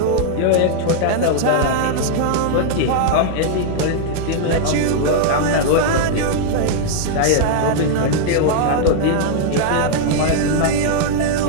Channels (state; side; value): different; both; correlation -0.01